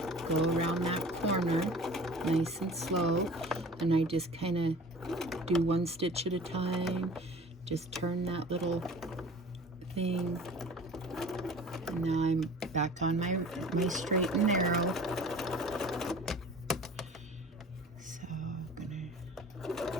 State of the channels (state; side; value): normal; both; correlation 0.44